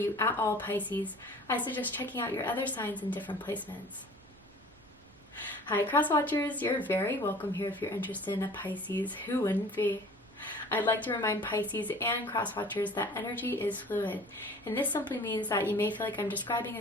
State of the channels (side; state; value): right; noise; rumble, 27 dB below the sound